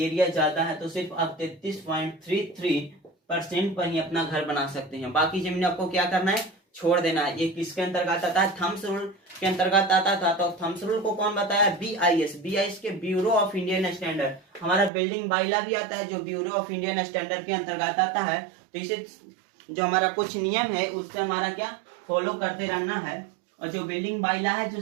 ज्यादा है तो सिर्फ आप 33.33% पर ही अपना घर बना सकते हैं। बाकी जमीन आपको क्या करना है? छोड़ देना है। ये किसके अंतर्गत आता है? थम्स रूल के अंतर्गत आता था। तो थम्स रूल को कौन बताया? BIS के ब्यूरो ऑफ इंडियन स्टैंडर्ड। हमारा बिल्डिंग बाइला भी आता है जो ब्यूरो ऑफ इंडियन स्टैंडर्ड के अंतर्गत आता है। तो इसे जो हमारा कुछ नियम है उससे हमारा क्या फॉलो करते रहना है। और जो बिल्डिंग बाइला है जो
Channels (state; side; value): drops out; left; at 14.9 s